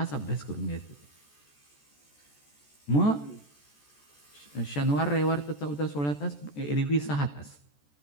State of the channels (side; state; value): right; late; 14 ms